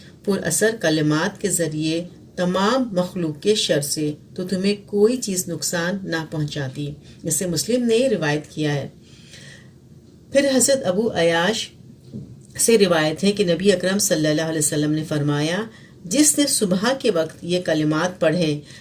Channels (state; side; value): identical; both; correlation 1.00